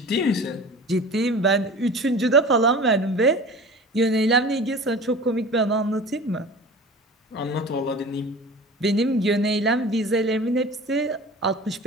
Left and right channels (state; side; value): normal; both; correlation 0.38